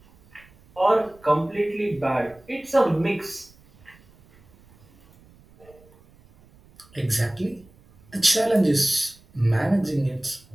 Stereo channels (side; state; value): right; noise; rumble, 28 dB below the sound